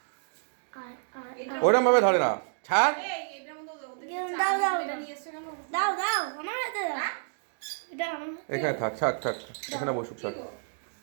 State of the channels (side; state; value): left; silent; digital silence